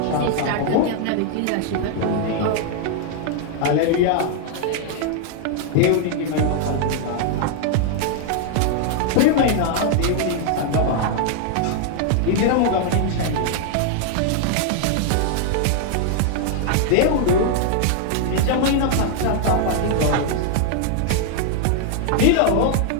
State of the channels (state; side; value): different; both; correlation 0.00